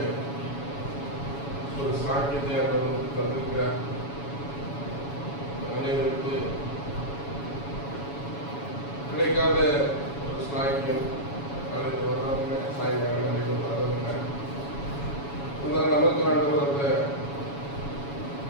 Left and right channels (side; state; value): right; late; 7.1 ms